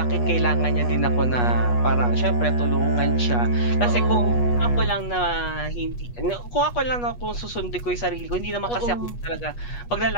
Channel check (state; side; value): late; right; 8.3 ms